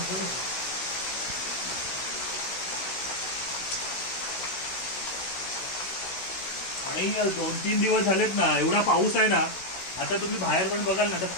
आणि 2-3 दिवस झालेत ना, एवढा पाऊस आहे ना. आता तुम्ही बाहेर पण बघाल ना, तर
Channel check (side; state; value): right; late; 16 ms